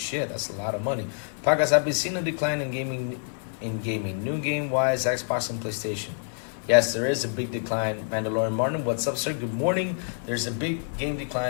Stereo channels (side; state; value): right; silent; 60 dB below the other